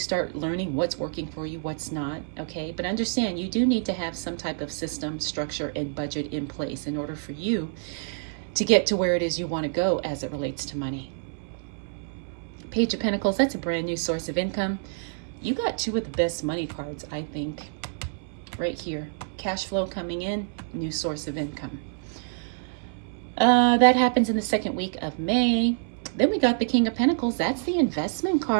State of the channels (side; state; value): left; silent; 60 dB below the other